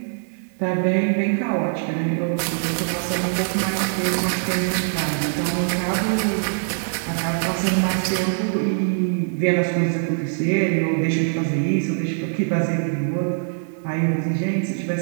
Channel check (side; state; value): left; silent; digital silence